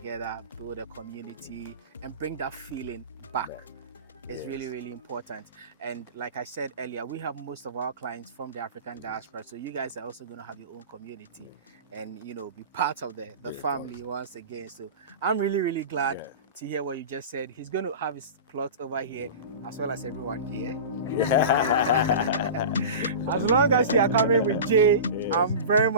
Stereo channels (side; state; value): both; inverted; correlation -0.31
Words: build a community, and bring that feeling back. It's really, really important. And like I said earlier, we have most of our clients from the African diaspora. So you guys are also going to have your own community and, be part of the family once again. So I'm really, really glad to hear what you just said. He's going to have his plot over here as well as everyone here. As long as you are coming with Jay, Yes. I'm very